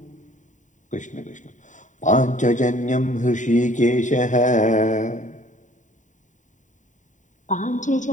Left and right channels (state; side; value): late; right; 0.36 ms